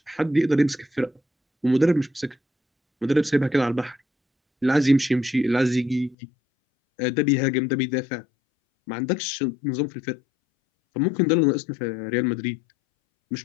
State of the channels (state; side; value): drops out; right; at 6.2 s